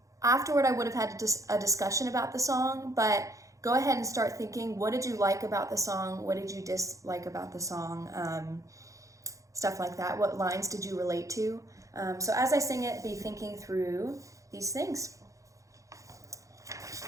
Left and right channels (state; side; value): late; left; 0.15 ms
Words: Afterward, I would have had a discussion about the song, but go ahead and start thinking, what did you like about the song? What did you dislike about the song? Stuff like that. What lines did you relate to? So as I sing it, be thinking through these things.